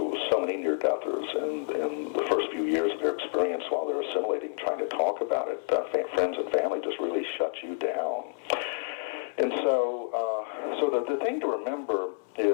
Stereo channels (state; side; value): silent; right; 59 dB below the other